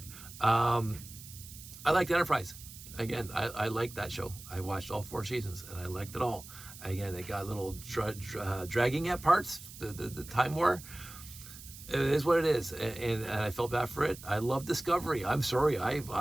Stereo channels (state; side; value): noise; right; hiss, 15 dB below the sound